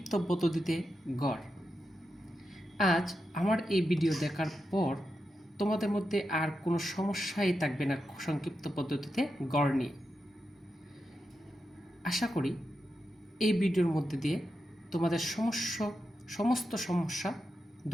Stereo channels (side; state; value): both; normal; correlation 0.88